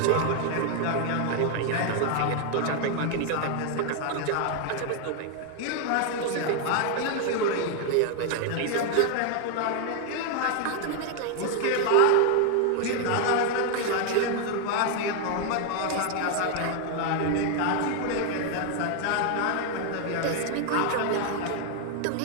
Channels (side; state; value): both; different; correlation 0.00